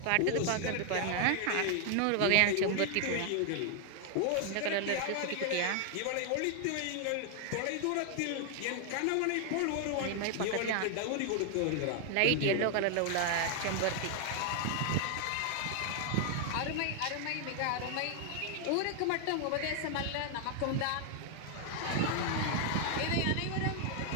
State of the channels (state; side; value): different; both; correlation 0.00